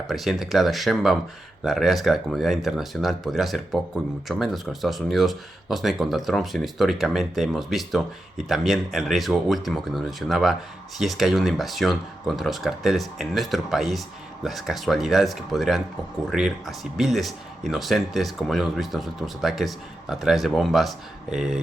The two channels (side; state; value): both; normal; correlation 0.89